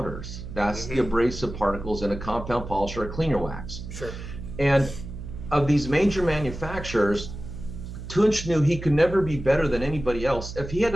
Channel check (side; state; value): right; noise; hum, 10 dB below the sound